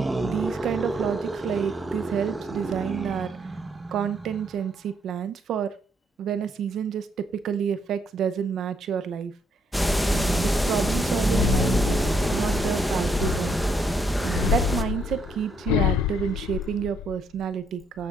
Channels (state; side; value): normal; both; correlation 0.72